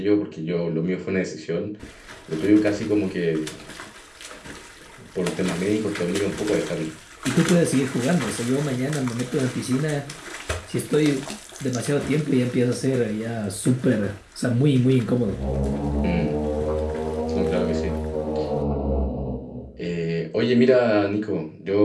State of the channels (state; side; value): identical; both; correlation 1.00